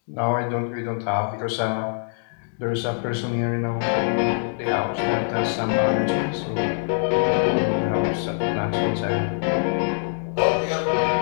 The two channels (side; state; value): right; silent; digital silence